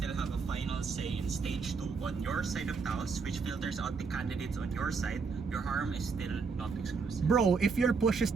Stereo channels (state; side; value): quieter; left; 5.0 dB